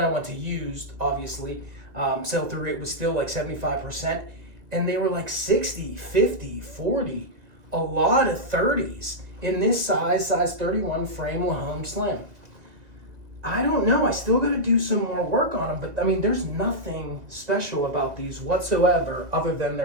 I went to used, obviously. Sell-through rate was still like 75%. And they were like 60, 50, 40, a lot of 30s in this size 31 frame Lahome Slim. I don't know. I still got to do some more work on them, but I mean, there's nothing special about these whatsoever other than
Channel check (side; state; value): left; late; 2.0 ms